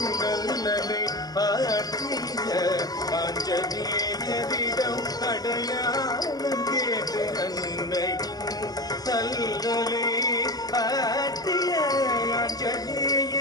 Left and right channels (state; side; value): late; right; 0.19 ms